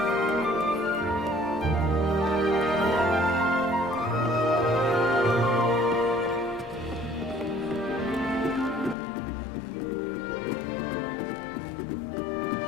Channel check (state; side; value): drops out; right; at 9.0 s